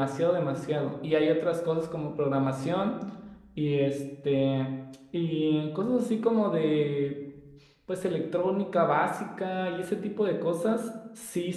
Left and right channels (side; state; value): both; identical; correlation 1.00